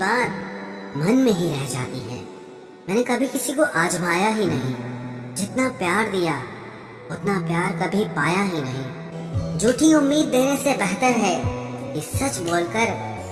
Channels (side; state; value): both; identical; correlation 1.00